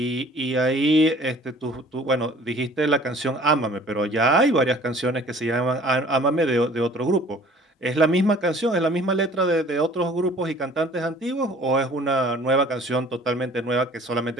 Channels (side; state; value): both; normal; correlation 0.51